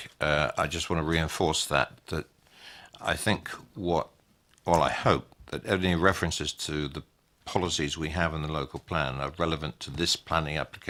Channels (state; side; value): identical; both; correlation 1.00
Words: I just want to reinforce that I think I hope that any references to the policies we have in the local plan are relevant to this planning